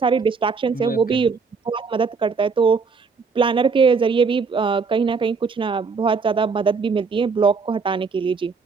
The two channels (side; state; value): left; quieter; 5.0 dB